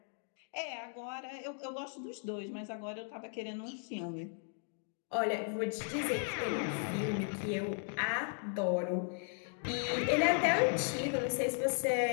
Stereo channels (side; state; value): right; silent; 54 dB below the other